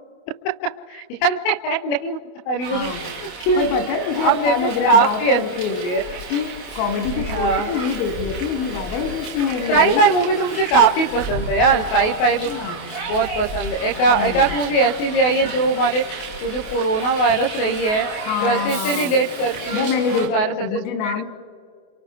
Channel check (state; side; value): late; right; 28 ms